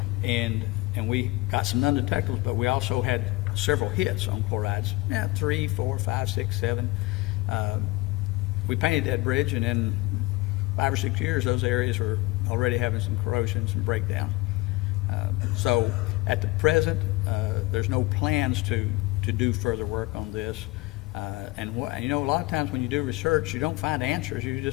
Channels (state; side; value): quieter; right; 21.7 dB